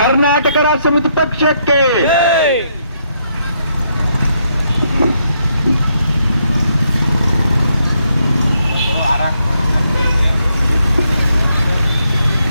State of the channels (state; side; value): inverted; both; correlation -0.76